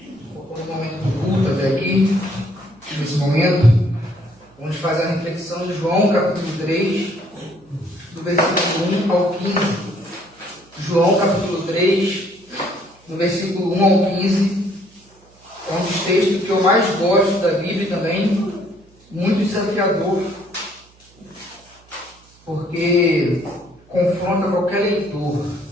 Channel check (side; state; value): right; noise; hum, 29 dB below the sound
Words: por um momento do culto até aqui, nesse momento, vamos fazer a reflexão de João, capítulo 3, do versículo 1 ao 15. João, capítulo 3, do versículo 1 ao 15, é um dos textos que eu mais gosto da Bíblia e também muito desafiador, porque confronta qualquer leitor.